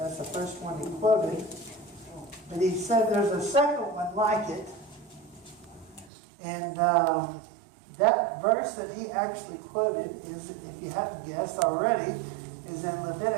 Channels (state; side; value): drops out; left; at 6.1 s